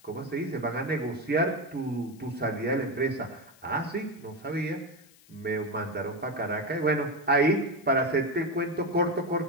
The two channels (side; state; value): left; noise; hiss, 26 dB below the sound